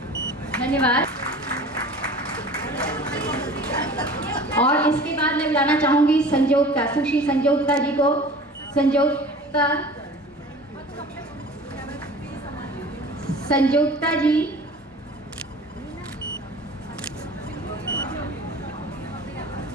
धन्यवाद। और इसके बाद मैं बुलाना चाहूंगी संजोक्ता, सुश्री संजोक्ता जी को। संजोक्ता जी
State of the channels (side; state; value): both; normal; correlation 0.42